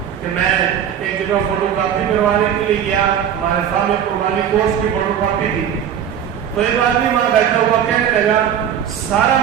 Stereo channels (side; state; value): left; quieter; 9.1 dB